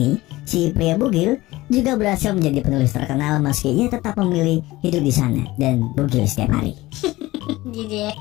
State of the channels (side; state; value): right; quieter; 18.6 dB